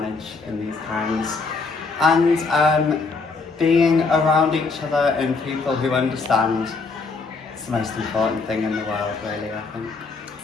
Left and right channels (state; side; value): quieter; right; 4.2 dB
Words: in these times. And being around each other and people who understand is the most important thing in the world, really, I think.